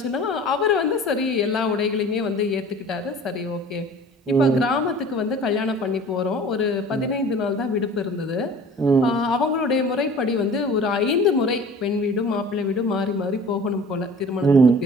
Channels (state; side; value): normal; both; correlation 0.44